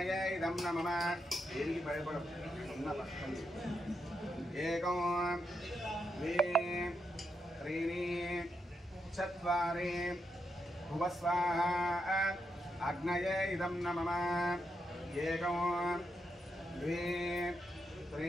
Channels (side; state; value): both; normal; correlation 0.83